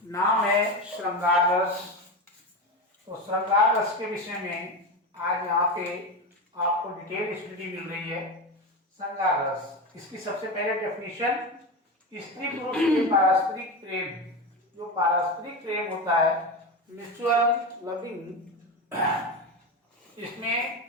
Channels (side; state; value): both; normal; correlation 0.20